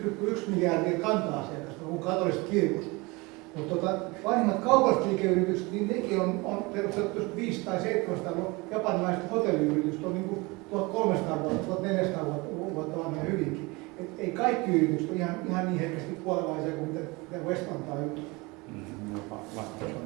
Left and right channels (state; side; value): quieter; left; 25.0 dB